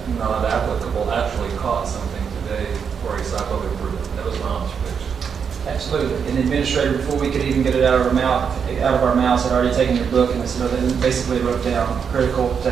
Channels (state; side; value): quieter; left; 6.8 dB